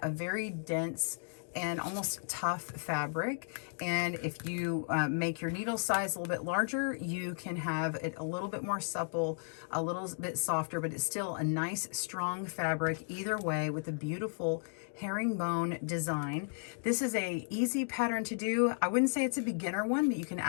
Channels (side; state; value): right; silent; digital silence